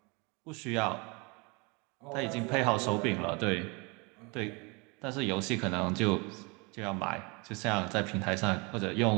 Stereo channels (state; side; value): quieter; left; 29.5 dB